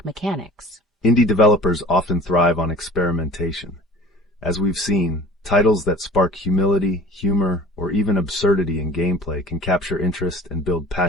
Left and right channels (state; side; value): normal; both; correlation 0.45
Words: mechanics? Indie developers often thrive on experimentation. As we've seen, titles that spark humility, humor, or even absurdity in gameplay can capture interest and build